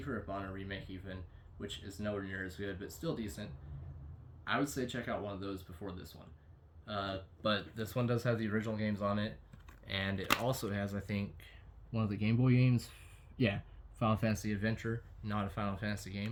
of Mana remake, even, which is nowhere near as good, but still decent. I would say check out one of those before this one. But this one does have the original games on it, and it also has, I think, one of the Game Boy games. Yeah, Final Fantasy Adventure. Not a Final Fantasy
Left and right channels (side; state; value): both; identical; correlation 1.00